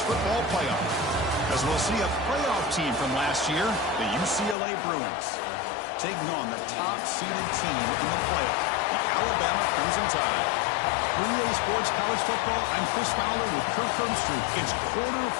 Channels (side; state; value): right; drops out; at 4.5 s